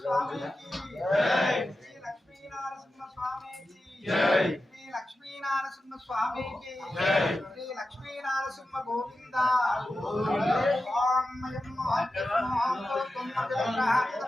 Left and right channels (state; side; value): normal; both; correlation 0.92